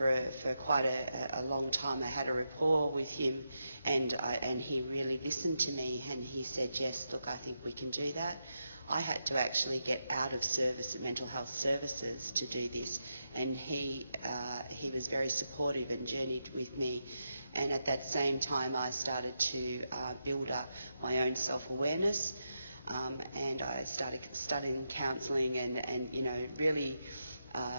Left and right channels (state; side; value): inverted; both; correlation -0.86